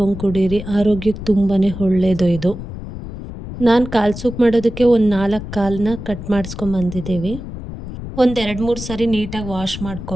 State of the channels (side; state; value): left; noise; rumble, 10 dB below the sound